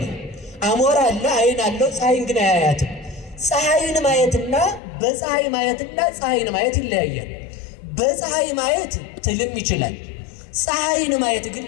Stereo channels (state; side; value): drops out; right; at 4.8 s